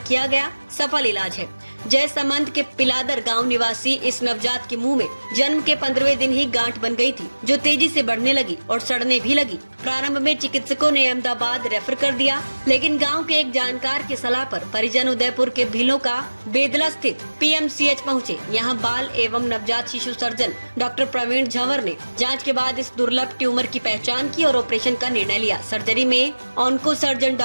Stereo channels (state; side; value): inverted; both; correlation -1.00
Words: किया गया सफल इलाज है। जय समंत के पिलादर गांव निवासी इस नवजात के मुंह में जन्म के 15वें दिन ही गांठ बन गई थी, जो तेजी से बढ़ने लगी और सड़ने भी लगी। प्रारंभ में चिकित्सकों ने अहमदाबाद रेफर कर दिया, लेकिन गांव के एक जानकार की सलाह पर परिजन उदयपुर के भीलों का बेदला स्थित पीएमसीएच पहुंचे। यहां बाल एवं नवजात शिशु सर्जन डॉक्टर प्रवीण झंवर ने जांच के बाद इस दुर्लभ ट्यूमर की पहचान की और ऑपरेशन का निर्णय लिया। सर्जरी में onco surgeon